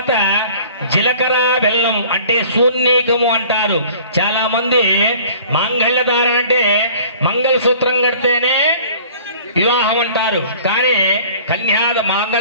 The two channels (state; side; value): inverted; both; correlation -0.48